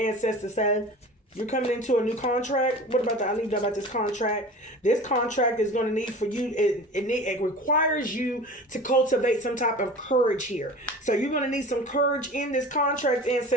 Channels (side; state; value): both; normal; correlation 0.38